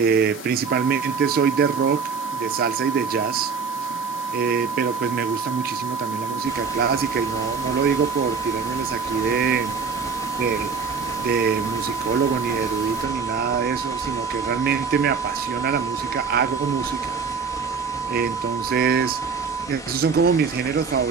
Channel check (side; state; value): left; quieter; 5.5 dB